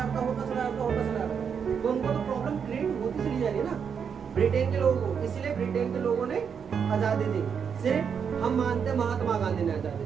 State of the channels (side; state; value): left; quieter; 6.9 dB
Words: तो उनको तो प्रॉब्लम क्रिएट होती चली जा रही है ना ब्रिटेन के लोगों को। इसलिए ब्रिटेन के लोगों ने आजादी दी। सिर्फ हम मानते हैं महात्मा गांधी ने आजादी